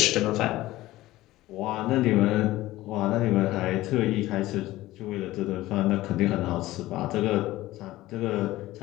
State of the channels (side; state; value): right; quieter; 16.9 dB